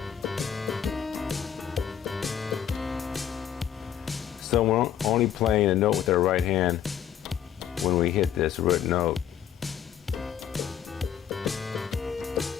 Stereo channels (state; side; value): quieter; right; 9.5 dB